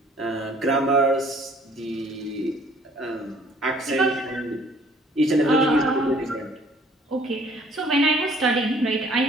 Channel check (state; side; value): normal; both; correlation 0.57